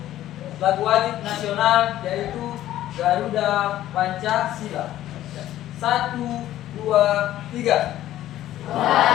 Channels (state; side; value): quieter; right; 13.4 dB